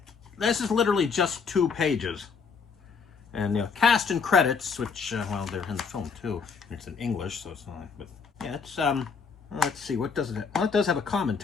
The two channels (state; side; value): quieter; right; 5.6 dB